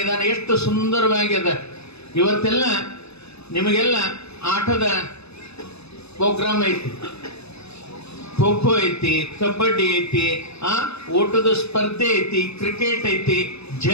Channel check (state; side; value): late; right; 0.79 ms